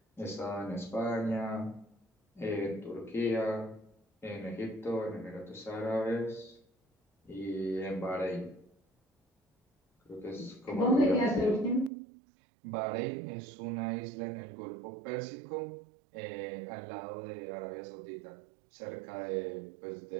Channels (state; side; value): drops out; left; at 11.9 s